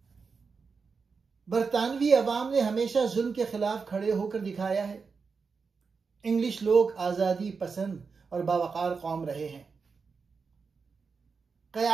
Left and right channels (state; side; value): quieter; left; 5.1 dB